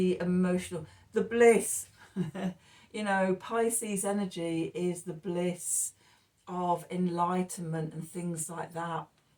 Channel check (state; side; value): identical; both; correlation 1.00